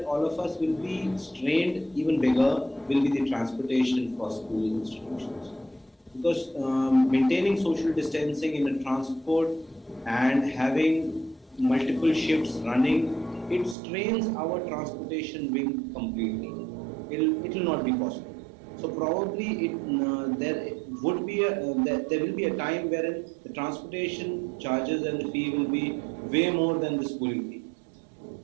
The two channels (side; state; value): left; drops out; at 13.8 s